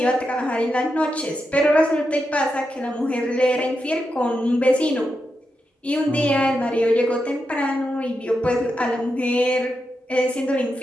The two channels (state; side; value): normal; both; correlation 0.86